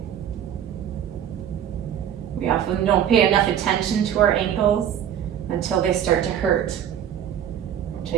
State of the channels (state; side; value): quieter; left; 9.6 dB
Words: We often don't pay enough attention to our ankles until they start to hurt,